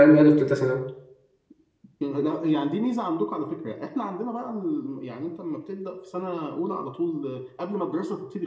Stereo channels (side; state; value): both; identical; correlation 1.00